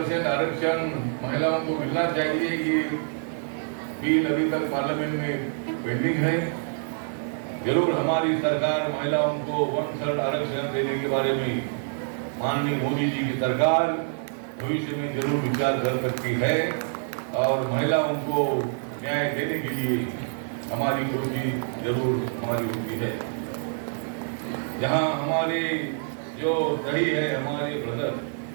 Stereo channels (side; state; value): left; silent; digital silence